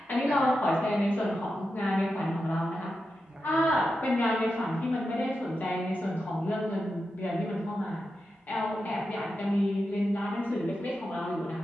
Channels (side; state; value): both; normal; correlation 0.89